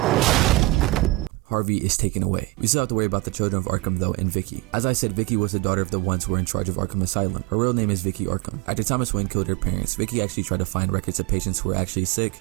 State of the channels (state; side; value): quieter; left; 20.7 dB